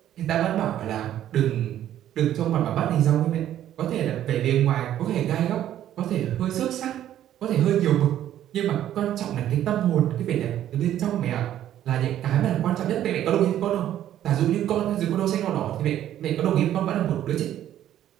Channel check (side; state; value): left; quieter; 11.7 dB